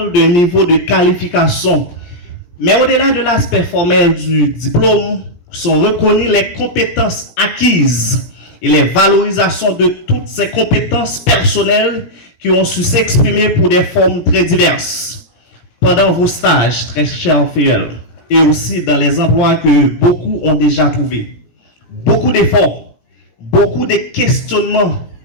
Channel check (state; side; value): late; right; 17 ms